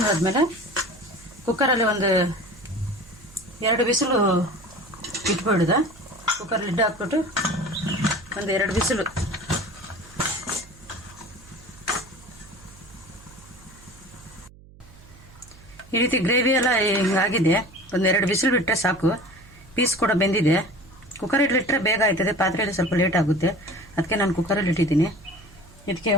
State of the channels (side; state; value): right; noise; hum, 23 dB below the sound